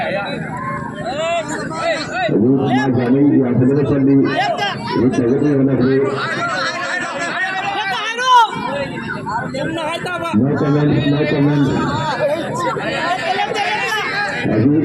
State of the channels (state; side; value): identical; both; correlation 1.00